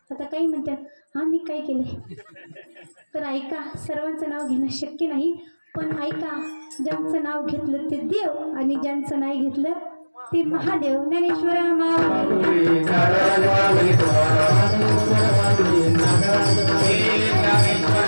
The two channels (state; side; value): inverted; both; correlation -1.00